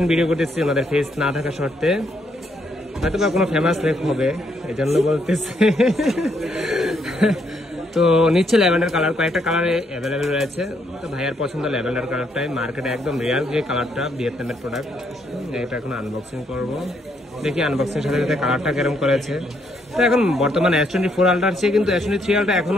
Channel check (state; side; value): normal; both; correlation 0.73